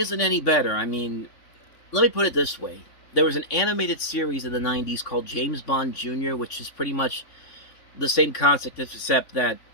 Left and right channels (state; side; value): late; right; 3.5 ms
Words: any better. I mean, let me put it this way. There was an animated series in the 90s called James Bond Jr., which is pretty much the same concept, except that,